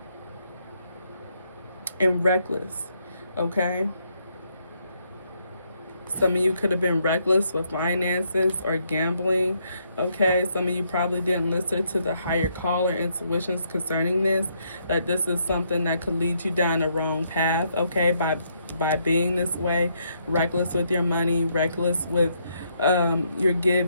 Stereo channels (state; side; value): inverted; both; correlation -0.74